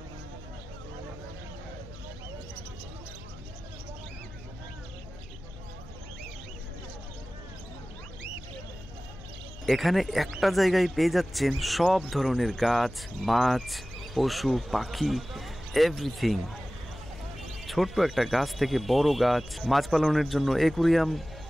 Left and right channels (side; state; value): left; noise; hum, 16 dB below the sound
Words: এখানে একটা জায়গায় পেয়ে যাচ্ছেন সব ধরনের গাছ, মাছ, পশু, পাখি, এভরিথিং। ছোট্ট একটা গাছ থেকে বড় গাছ, মাছ পালনের জন্য অ্যাকুরিয়াম